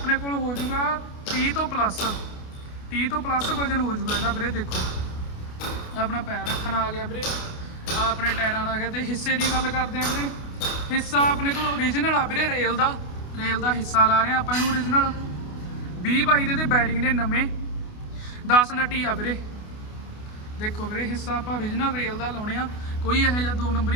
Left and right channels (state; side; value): late; right; 28 ms